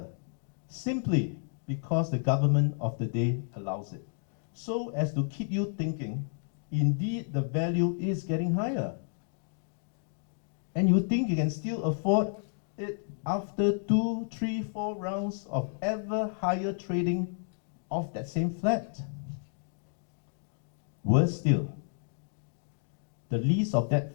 simply because the government of the day allows it, so as to keep you thinking, indeed the value is getting higher. And you think you can still afford it after 2, 3, 4 rounds of ever higher trading of that same flat. Worse still, the lease of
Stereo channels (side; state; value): right; silent; 57 dB below the other